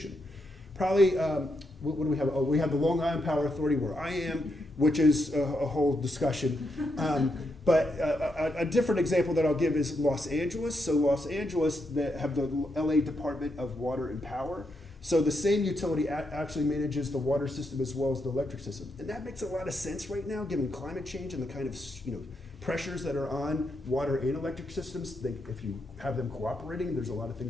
Probably, what do we have? Oh, we have the Long Island Power Authority where I am, which is a whole discussion. But a different example that I'll give is Los Angeles. So Los Angeles, they have the LA Department of Water and Power. So the same utility actually manages the water system as well as the electric system. And that makes a lot of sense right now, given climate change and the kind of pressures that are on water and electric systems. If you have them cooperating, there's a lot of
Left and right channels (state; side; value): normal; both; correlation 0.82